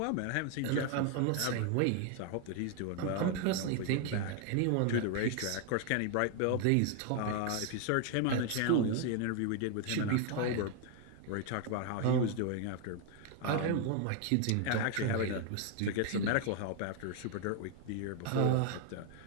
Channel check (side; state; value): both; different; correlation 0.01